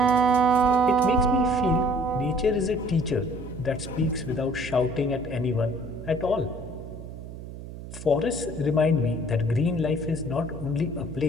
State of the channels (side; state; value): right; noise; hum, 12 dB below the sound